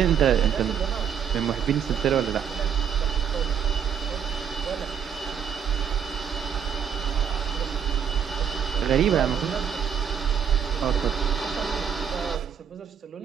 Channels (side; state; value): left; quieter; 7.9 dB